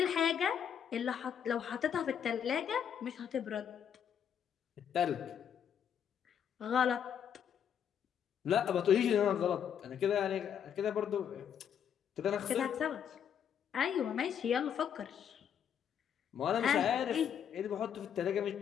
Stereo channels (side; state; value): right; quieter; 8.5 dB